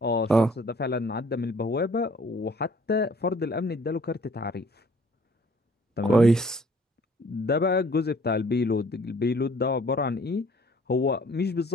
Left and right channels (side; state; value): both; normal; correlation 0.56